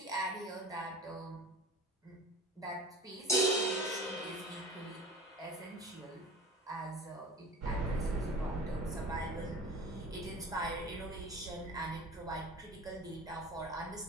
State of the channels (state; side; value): normal; both; correlation 0.37